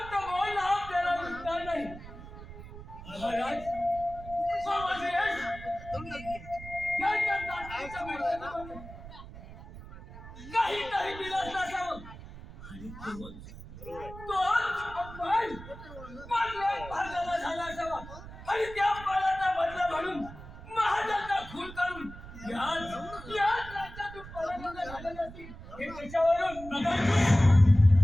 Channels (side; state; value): right; noise; rumble, 14 dB below the sound